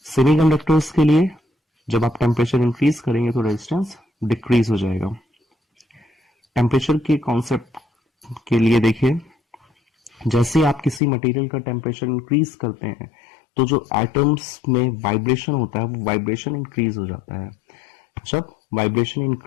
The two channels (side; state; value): right; drops out; at 11.0 s